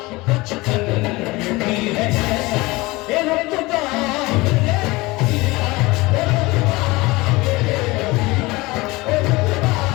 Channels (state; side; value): quieter; right; 22.1 dB